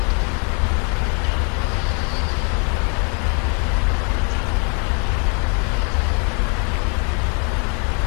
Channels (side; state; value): right; quieter; 37.6 dB